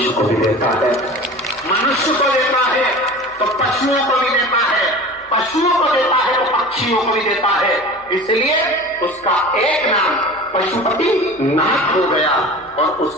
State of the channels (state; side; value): noise; left; hum, 29 dB below the sound